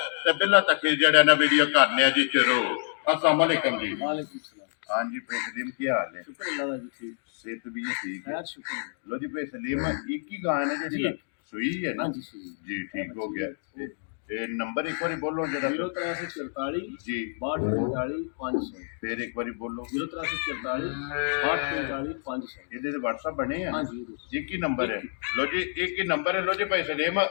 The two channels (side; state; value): right; silent; digital silence